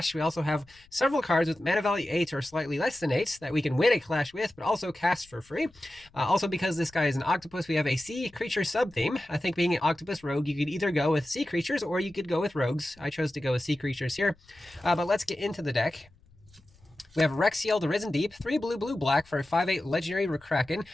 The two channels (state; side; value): noise; left; rumble, 28 dB below the sound